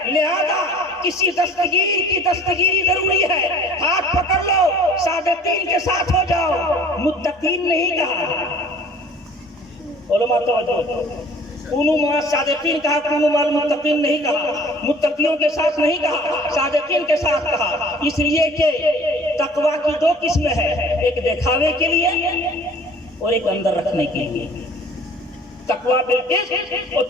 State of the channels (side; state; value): both; normal; correlation 0.49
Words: لہذا کسی دستگیر کی دستگیری ضروری ہے۔ ہاتھ پکڑ لو، صادقین کے ساتھ ہو جاؤ، متقین نہیں کہا۔ علماء توجہ، کونوا مع الصادقین کہا، کونوا مع المتقین نہیں کہا، متقیوں کے ساتھ نہیں کہا، صادقین کے ساتھ کہا، اس لیے کہ تقوی کی دو قسمیں ہیں، ایک دکھاوے کے لیے اور ایک اندر رکھنے کے لیے۔ تقوی بالقسط اور